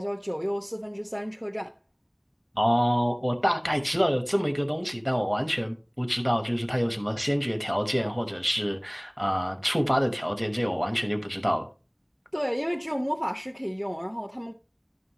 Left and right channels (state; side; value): identical; both; correlation 1.00